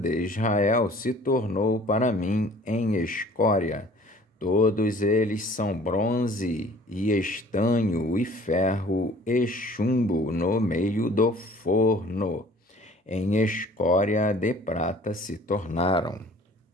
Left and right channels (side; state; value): both; normal; correlation 0.51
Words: Israel se tornou para mim em escória. Todos eles são bronze e estanho e ferro e chumbo no meio do forno. Em escória de prata se tornaram.